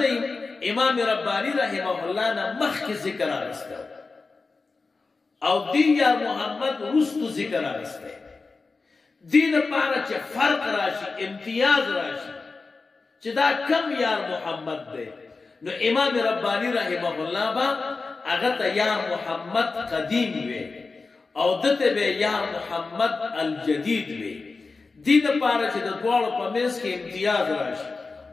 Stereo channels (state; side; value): quieter; right; 4.1 dB